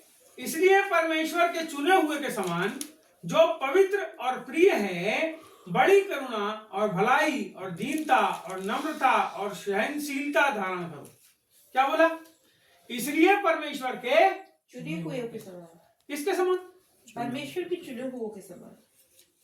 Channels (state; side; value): identical; both; correlation 1.00